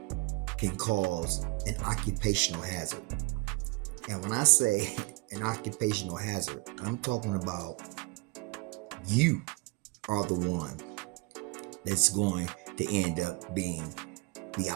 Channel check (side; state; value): left; quieter; 25.0 dB